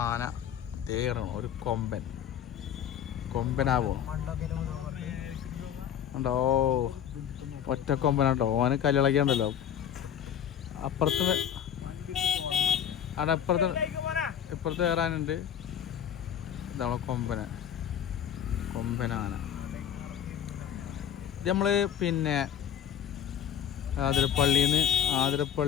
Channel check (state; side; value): quieter; right; 9.3 dB